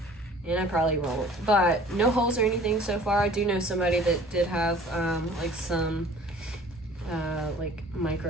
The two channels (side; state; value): both; normal; correlation 0.49